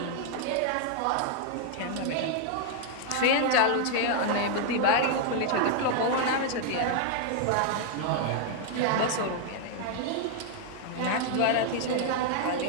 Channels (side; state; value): both; different; correlation 0.00